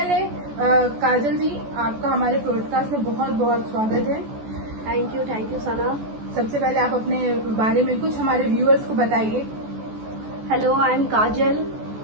काजल जी, आपका हमारे पॉडकास्ट में बहुत बहुत स्वागत है। थैंक यू सना। सबसे पहले आप अपने बारे में कुछ हमारे व्यूअर्स को बताइए। हेलो, आई एम काजल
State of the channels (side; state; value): left; late; 14 ms